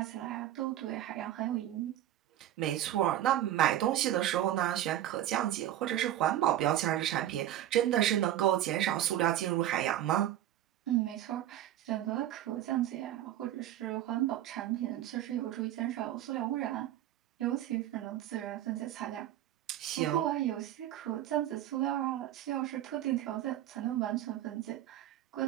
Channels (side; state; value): left; quieter; 12.6 dB